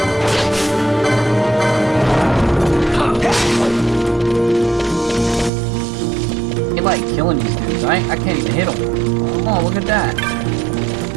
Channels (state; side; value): drops out; left; at 5.5 s